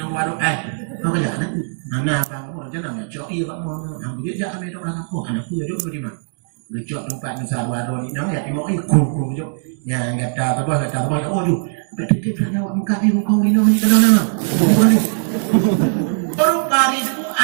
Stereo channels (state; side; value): silent; left; digital silence